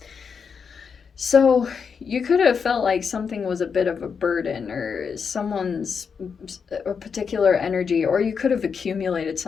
So you could have felt like something was a bit of a burden, or someone's a particular energy, or you could have accumulated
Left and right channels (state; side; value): quieter; right; 6.1 dB